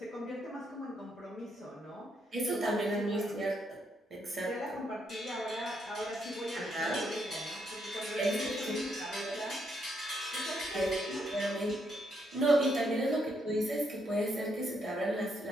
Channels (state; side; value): normal; both; correlation 0.76